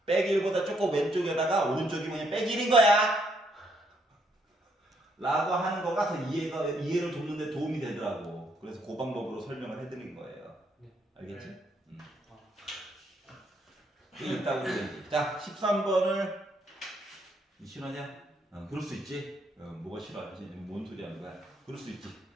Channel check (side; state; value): both; normal; correlation 0.72